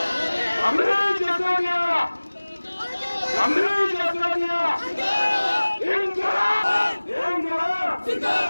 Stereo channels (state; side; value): inverted; both; correlation -1.00